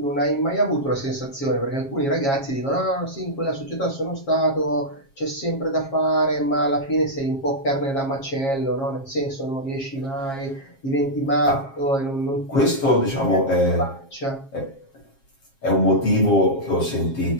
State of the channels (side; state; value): right; late; 7.4 ms